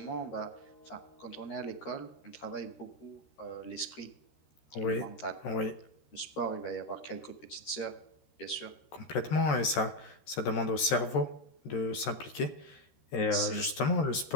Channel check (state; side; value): late; right; 13 ms